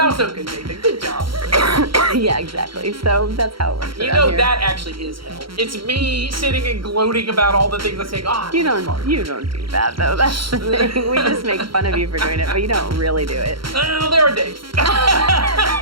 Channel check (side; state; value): left; late; 0.74 ms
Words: was so good, Nathan. Good job. Yeah, exactly. So that's how it works. You know, that actually is hell. It's me sitting and gloating about all the things I say. Oh, you don't do that though. That's the thing. We just make fun of you for doing it, but you don't really do it. Well, there are days.